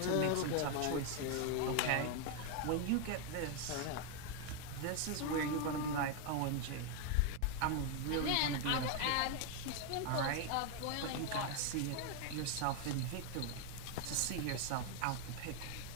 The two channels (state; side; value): different; both; correlation 0.01